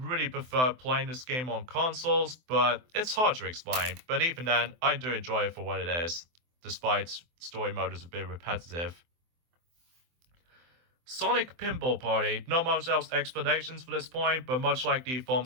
prefer playing this game on consoles, but it's hard to explain. But even then, I do enjoy it for what it is, despite story mode is a bit repetitive. Sonic Pinball Party. Not much else explanations for this point, but much like the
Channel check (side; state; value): left; late; 24 ms